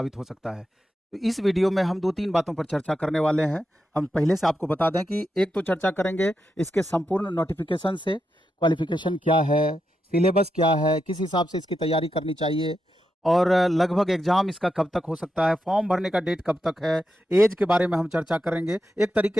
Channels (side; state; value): both; normal; correlation 0.86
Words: हो सकता है। तो इस वीडियो में हम 2-3 बातों पर चर्चा करने वाले हैं। हम पहले से आपको बता दें कि एक तो चर्चा करेंगे इसके संपूर्ण नोटिफिकेशन से, क्वालिफिकेशन क्या है, सिलेबस क्या है, किस हिसाब से इसकी तैयारी करनी चाहिए और लगभग एग्जाम इसका कब तक हो सकता है, फॉर्म भरने का डेट कब तक है, एज के बारे में हम चर्चा करेंगे। एक